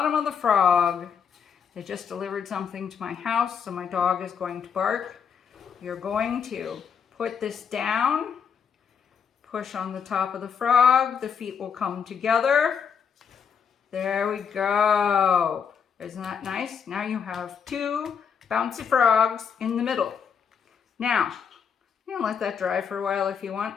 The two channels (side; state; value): right; quieter; 7.0 dB